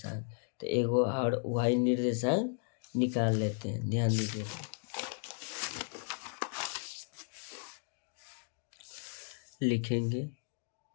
तो एगो और वाई निर्देशांक निकाल लेते हैं, ध्यान दीजिएगा। लिखेंगे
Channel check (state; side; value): silent; right; 54 dB below the other